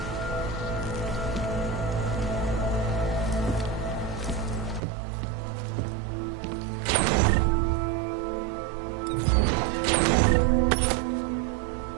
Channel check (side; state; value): left; drops out; at 4.8 s